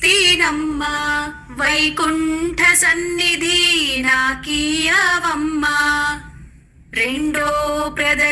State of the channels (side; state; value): both; identical; correlation 1.00